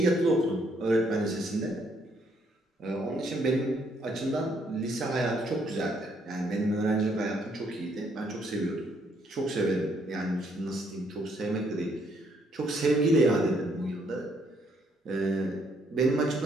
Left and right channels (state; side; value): normal; both; correlation 0.70